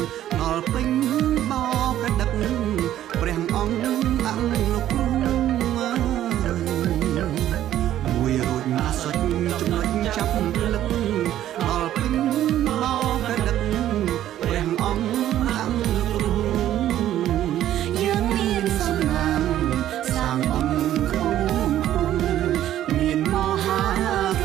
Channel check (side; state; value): left; quieter; 12.3 dB